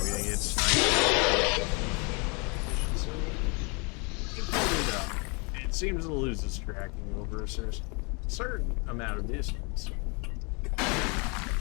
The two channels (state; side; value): quieter; right; 32.1 dB